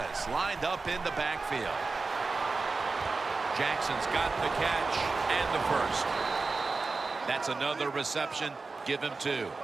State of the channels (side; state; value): left; quieter; 4.0 dB